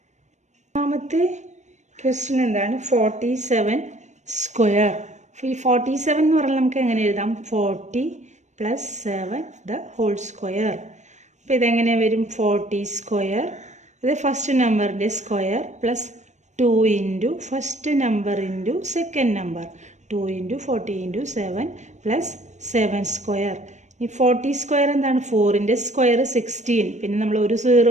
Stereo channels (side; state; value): left; late; 0.34 ms